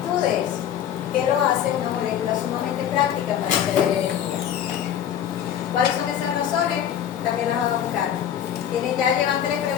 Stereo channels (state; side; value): quieter; right; 9.8 dB